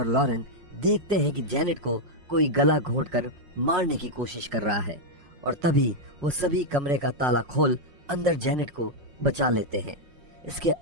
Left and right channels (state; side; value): late; left; 5.5 ms